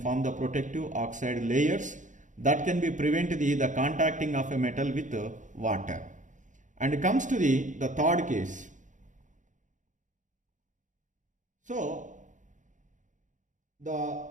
the protective oxide layers that can be prevent the contacting of a metal with water. And it comes to the third case. So the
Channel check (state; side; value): late; left; 0.36 ms